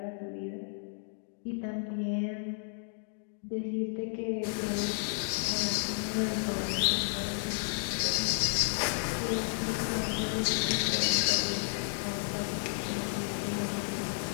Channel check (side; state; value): right; silent; digital silence